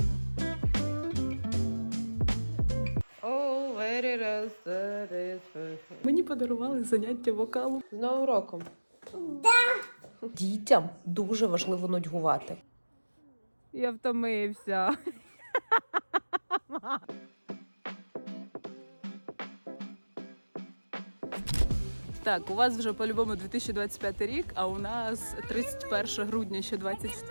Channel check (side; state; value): both; inverted; correlation -1.00